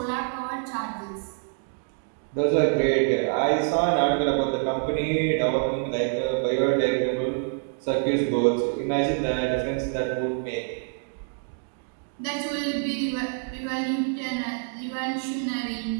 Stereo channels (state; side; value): silent; left; 61 dB below the other